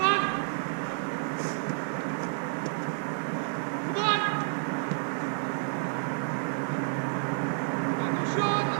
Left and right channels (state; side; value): silent; left; 58 dB below the other